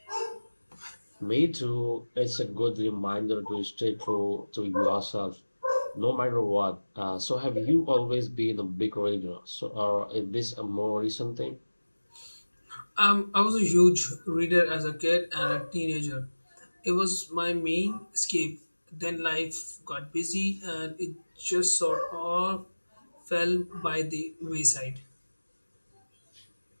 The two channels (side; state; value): both; inverted; correlation -1.00